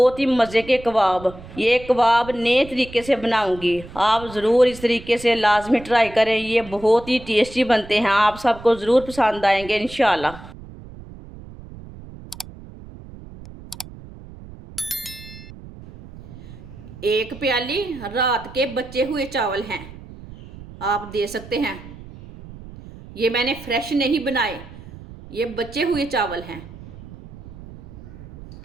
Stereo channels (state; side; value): noise; right; rumble, 16 dB below the sound